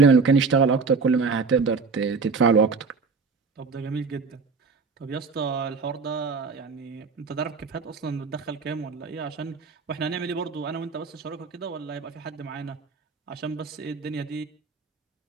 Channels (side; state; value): left; quieter; 4.8 dB